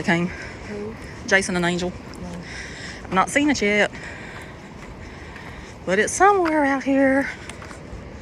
came. Who? Jason and Angel. No. I've not seen it yet, but it's somewhere out here.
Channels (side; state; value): both; identical; correlation 1.00